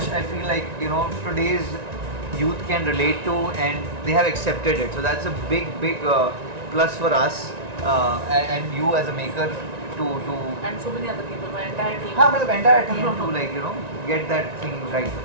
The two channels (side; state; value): left; late; 1.9 ms